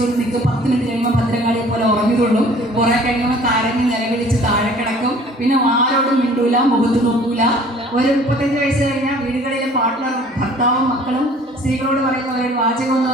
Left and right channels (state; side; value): normal; both; correlation 0.51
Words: നിൽക്കും, 10 മിനിറ്റ് കഴിയുമ്പോൾ ഭദ്രകാളിയെ പോലെ ഉറങ്ങിയതുള്ളൂ. കുറെ കഴിയുമ്പോൾ കരഞ്ഞ് നിലവിളിച്ച് താഴെ കിടക്കും. പിന്നെ ആരോടും മിണ്ടൂല, മുഖത്ത് നോക്കൂല. ഒരു 35 വയസ്സ് കഴിഞ്ഞാൽ വീടുകളിലെ പാർട്ട്ണർ, ഭർത്താവും മക്കളും സ്ത്രീകളോട് പറയുന്ന ഒരു വാചകം എന്ന്